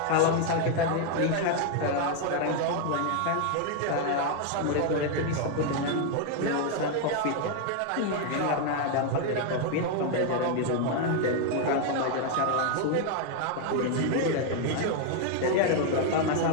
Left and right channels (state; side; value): different; both; correlation 0.01